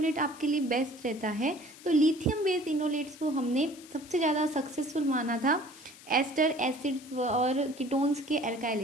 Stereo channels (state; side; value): noise; left; hiss, 20 dB below the sound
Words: आपके लिए बेस्ट रहता है, तो लिथियम बेस्ड इनोलेट्स को हमने सबसे ज़्यादा सक्सेसफुल माना था एस्टर, एसिड्स और कीटोन्स के